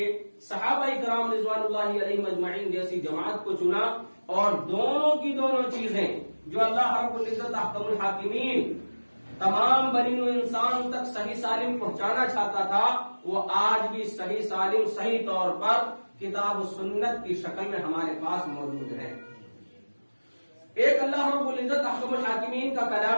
صحابہ کرام رضوان اللہ علیہم اجمعین جیسی جماعت کو چنا، اور دونوں کی دونوں چیزیں جو اللہ رب العزت احکم الحاکمین تمام بنی و انسان تک صحیح سالم پہنچانا چاہتا تھا، وہ آج بھی صحیح سالم صحیح طور پر کتاب و سنت کی شکل میں ہمارے پاس موجود ہے۔ ایک اللہ رب العزت احکم الحاکمین کا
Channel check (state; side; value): inverted; both; correlation -1.00